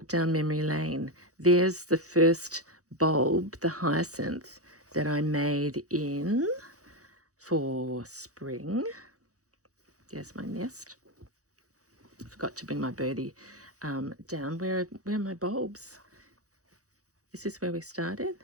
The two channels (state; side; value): late; left; 0.66 ms